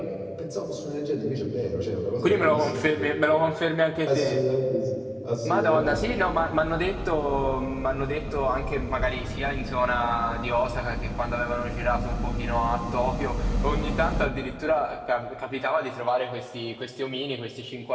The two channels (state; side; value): identical; both; correlation 1.00